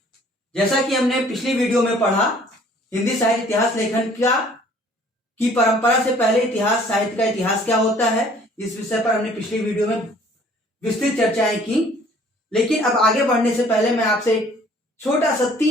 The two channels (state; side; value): normal; both; correlation 0.55